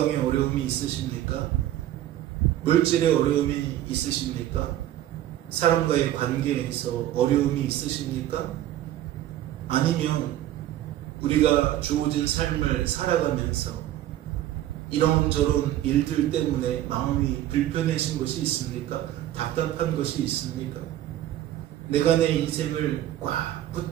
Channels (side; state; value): left; quieter; 13.0 dB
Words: 어려움이 있으십니까? 물질에 어려움이 있으십니까? 사람과의 관계에서 어려움이 있으십니까? 아니면 우리가 주어진 삶을 살아가면서 이런저런 일들 때문에 마음이 불편해진 것이 있습니까? 답답한 것이 있습니까? 내가 내 인생을 꽉